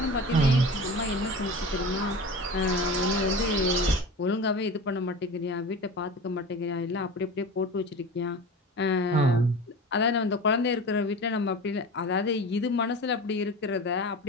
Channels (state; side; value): normal; both; correlation 0.33